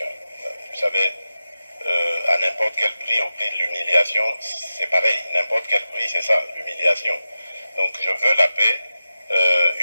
Vous savez, à n'importe quel prix, au prix de l'humiliation, c'est pareil, n'importe quel prix, c'est ça, l'humiliation. Donc je veux la paix,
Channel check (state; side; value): inverted; both; correlation -0.92